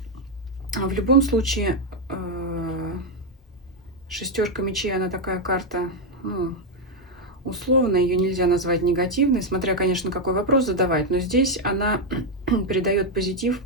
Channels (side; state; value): both; normal; correlation 0.02